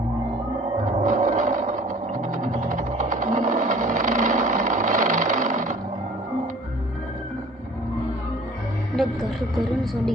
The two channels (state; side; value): normal; both; correlation 0.49